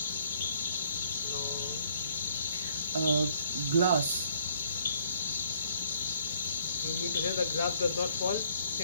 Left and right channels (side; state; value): both; inverted; correlation -0.64